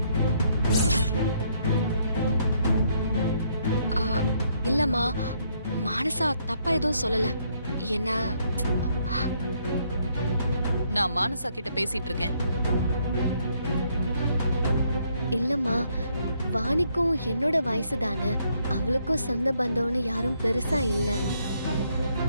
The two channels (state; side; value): inverted; both; correlation -0.71